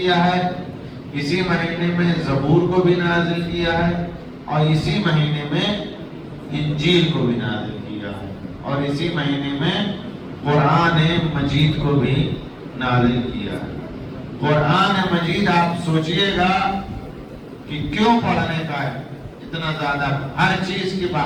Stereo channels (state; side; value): identical; both; correlation 1.00